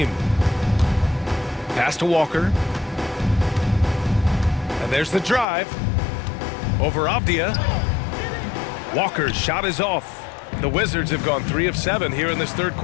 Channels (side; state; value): right; drops out; at 5.5 s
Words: Pass to Walker. And there's the drive. Over Avdia. Walker's shot is off. The Wizards have gone 3 of 7 here in this third